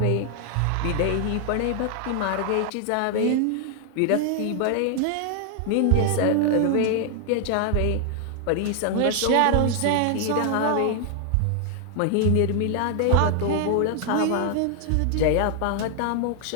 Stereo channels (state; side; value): different; both; correlation 0.00